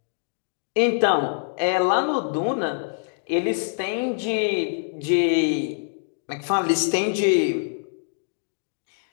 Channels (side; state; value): right; silent; digital silence